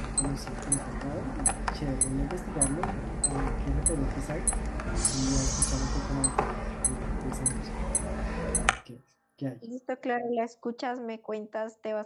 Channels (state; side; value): identical; both; correlation 1.00